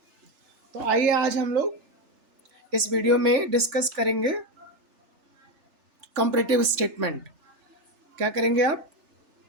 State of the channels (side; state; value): left; late; 3.4 ms